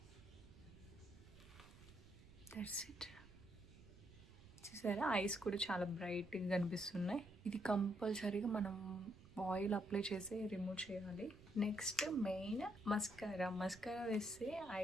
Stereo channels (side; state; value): right; noise; rumble, 19 dB below the sound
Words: that's it. చూసారా ఐస్ కూడా చాలా బ్రైట్గా కనిపిస్తున్నాయి. ఇది కంపల్సరీగా మనం ఆయిల్ అప్లై చేసి రిమూవ్ చేయాలి. నెక్స్ట్ మెయిన్ మస్కారా వేస్తే ఐ